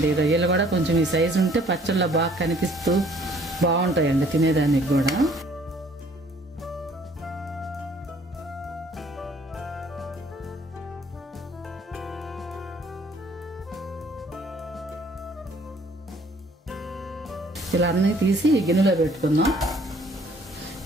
రొయ్యలు కూడా కొంచెం ఈ సైజు ఉంటే పచ్చళ్ళలో బాగా కనిపిస్తూ బాగుంటాయండి తినేదానికి కూడా. ఇలా అన్నీ తీసి గిన్నెలో పెట్టుకుందాం.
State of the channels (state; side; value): normal; both; correlation 0.59